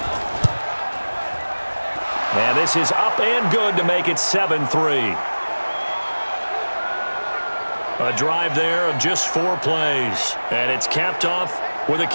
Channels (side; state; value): both; inverted; correlation -1.00